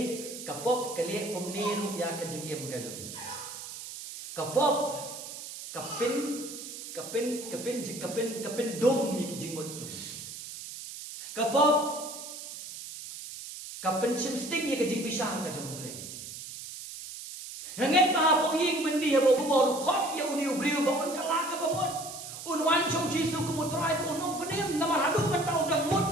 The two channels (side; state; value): right; noise; hiss, 10 dB below the sound